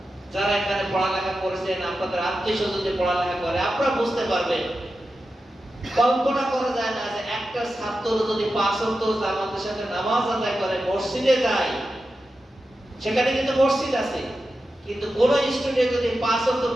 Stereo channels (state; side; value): normal; both; correlation 0.91